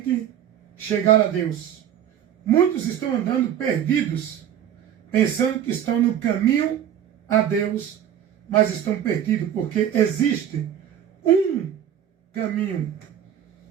chegar a Deus. Muitos estão andando perdidos, pensando que estão no caminho a Deus, mas estão perdidos, porque existe um caminho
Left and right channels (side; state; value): left; quieter; 9.8 dB